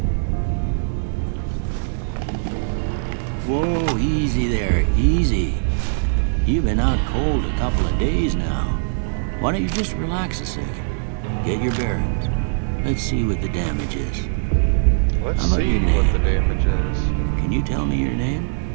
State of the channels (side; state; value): left; silent; digital silence